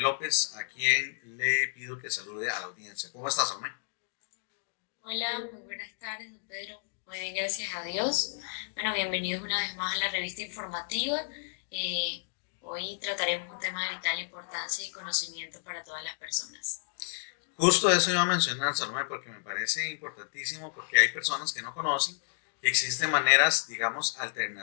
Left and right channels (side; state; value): right; silent; digital silence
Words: a quien le pido que salude a la audiencia. ¿Cómo estás, Salomé? Hola, muy buenas tardes, don Pedro. Muy bien, gracias a Dios. Bueno, bienvenidos una vez más a la revista informativa. Eh, Hoy trataremos un tema de vital importancia y conocimiento para todas las personas. Justo eso iba a mencionar, Salomé, porque me parece importantísimo, porque hay personas que no conocen que existen maneras, digamos,